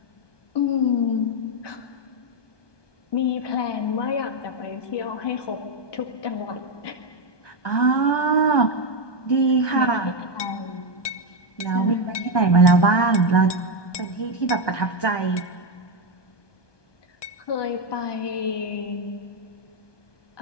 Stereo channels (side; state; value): right; late; 1.2 ms